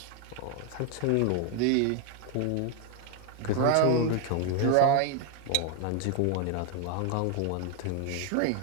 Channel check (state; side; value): different; both; correlation 0.01